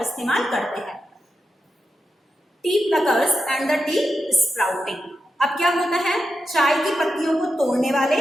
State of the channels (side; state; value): both; normal; correlation 0.88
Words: इस्तेमाल करते हैं। T pluckers and the T sprouting. अब क्या होता है, चाय की पत्तियों को तोड़ने वाले